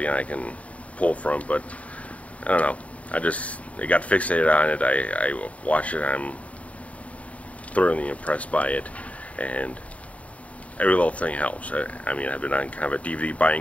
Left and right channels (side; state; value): right; late; 0.067 ms